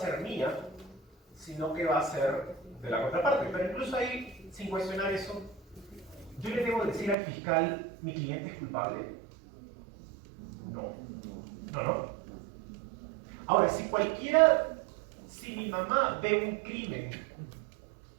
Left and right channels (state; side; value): drops out; left; at 7.2 s